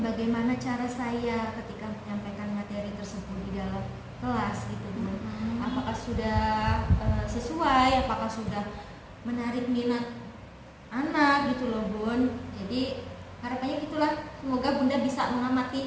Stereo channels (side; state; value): both; identical; correlation 1.00